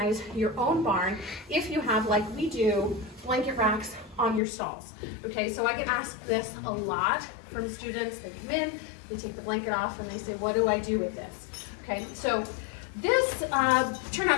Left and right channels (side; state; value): right; drops out; at 4.4 s